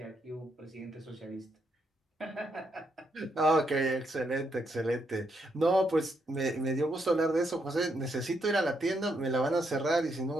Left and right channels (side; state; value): both; normal; correlation 0.78